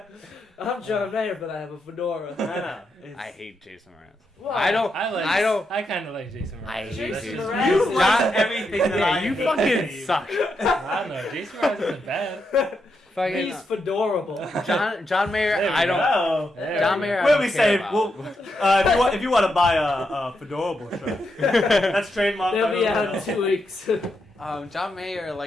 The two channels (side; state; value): both; normal; correlation 0.83